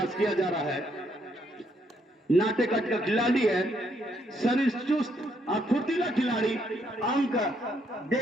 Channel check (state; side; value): normal; both; correlation 0.73